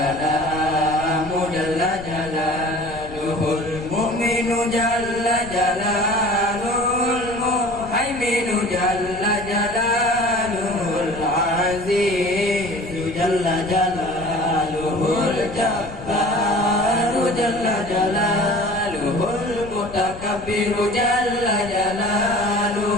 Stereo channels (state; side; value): noise; left; rumble, 15 dB below the sound